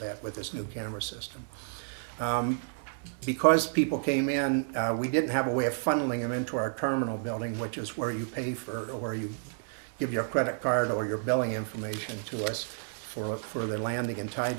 that with this new camera system. Because people came in, we didn't have a way of funneling them into our terminal building, which is where you pay for, or where you give your credit card or your billing information to us for the landing and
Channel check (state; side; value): silent; left; 57 dB below the other